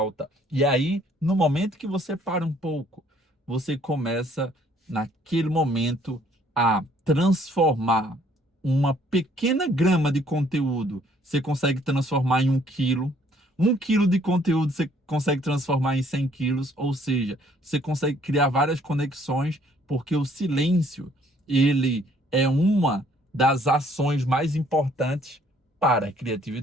E aí, no momento que você para um pouco, você começa, naquele momento, a transformar uma pequena grama de conteúdo. Você consegue transformar em 1 quilo. 1 quilo de conteúdo você consegue transformar em 100 quilos. Ou seja, você consegue criar várias conexões, porque o silêncio, ele é uma das ações mais importantes para a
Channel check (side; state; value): both; normal; correlation 0.62